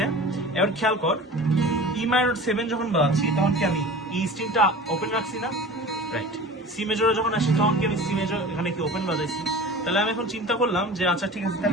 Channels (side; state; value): both; normal; correlation 0.38